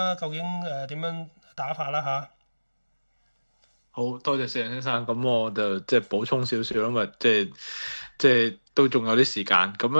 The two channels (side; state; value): both; inverted; correlation -1.00